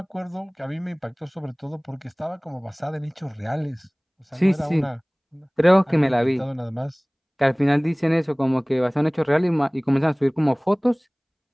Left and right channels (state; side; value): identical; both; correlation 1.00